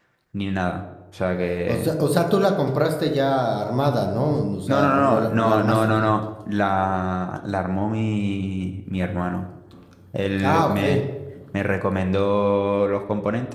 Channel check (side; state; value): both; identical; correlation 1.00